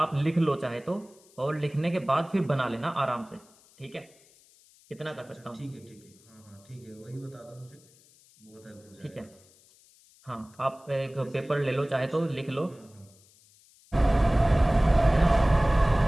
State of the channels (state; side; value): noise; left; hiss, 28 dB below the sound